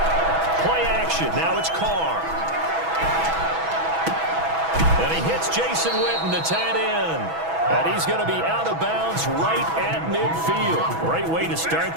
Play action. Now it's Carr. And he hits Jason Witten, the tight end. And he's going to be out of bounds right at midfield. Great way to start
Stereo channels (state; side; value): late; left; 6.1 ms